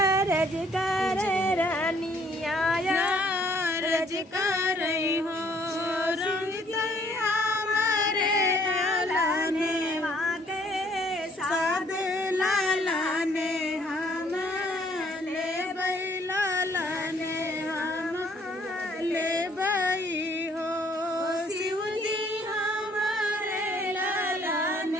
रज कर रनिया रज कर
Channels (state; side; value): normal; both; correlation 0.63